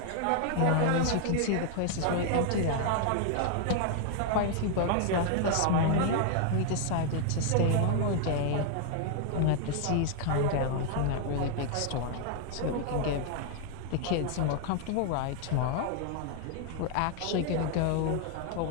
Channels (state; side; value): different; both; correlation 0.00